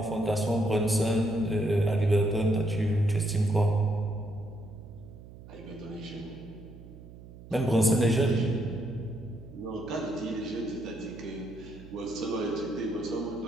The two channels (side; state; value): right; noise; hum, 17 dB below the sound